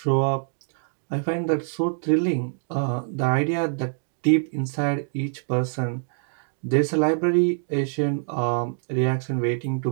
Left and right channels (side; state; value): left; silent; digital silence